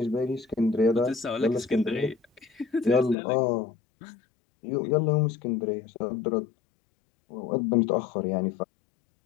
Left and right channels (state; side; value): drops out; right; at 3.2 s